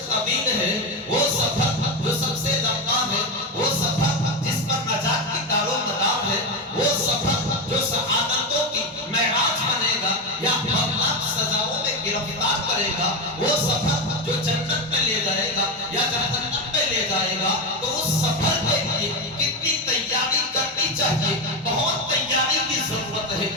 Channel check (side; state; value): both; normal; correlation 0.13